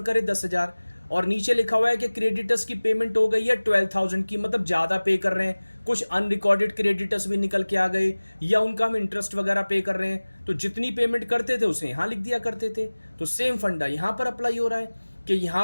करे 10,000 और नीचे लिखा हुआ है कि क्रेडिटर्स की पेमेंट हो गई है 12,000 की, मतलब ज़्यादा पे कर रहे हैं, कुछ अनरिकॉर्डेड क्रेडिटर्स भी निकल के आ गए या उनका हम इंटरेस्ट वगैरह पे कर रहे हैं, तो जितनी पेमेंट करते थे उसे यहाँ लिख दिया करते थे। तो सेम फंडा यहाँ पर अप्लाई हो रहा है कि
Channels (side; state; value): both; inverted; correlation -1.00